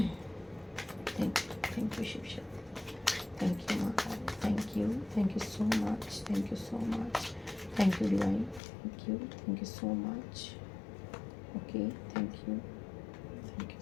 you Shiv Shakti, thank you माँ Kali, thank you so much, thank you so much, thank you divine, thank you so much. Okay, thank you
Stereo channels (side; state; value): right; drops out; at 8.6 s